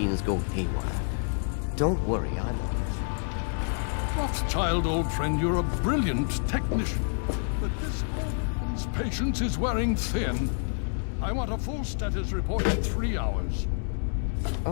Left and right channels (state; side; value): silent; right; 59 dB below the other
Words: go haywire. Don't worry, I'm... Rothschild, old friend, you're a brilliant technician. But this old man's patience is wearing thin. I want a full status report in 3 hours.